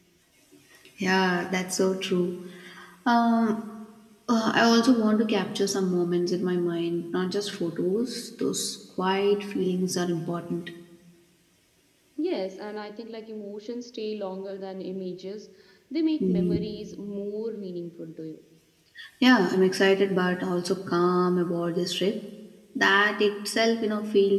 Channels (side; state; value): both; identical; correlation 1.00